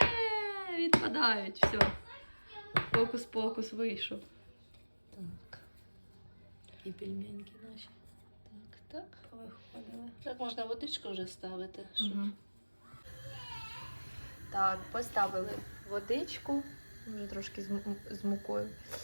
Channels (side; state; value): both; inverted; correlation -1.00